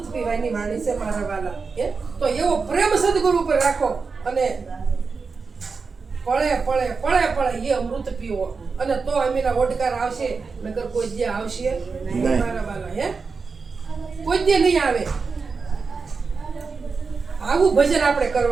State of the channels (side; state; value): left; quieter; 4.8 dB